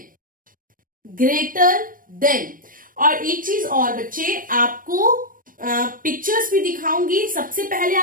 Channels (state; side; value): late; left; 0.40 ms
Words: Greater than. और एक चीज और बच्चे, आपको pictures भी दिखाऊंगी. सबसे पहले